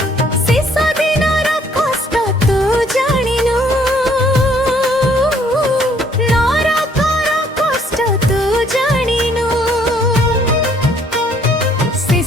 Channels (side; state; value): both; normal; correlation 0.63